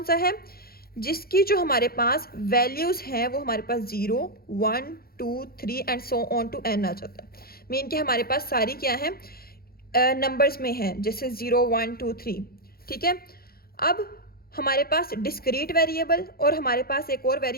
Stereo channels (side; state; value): right; late; 0.44 ms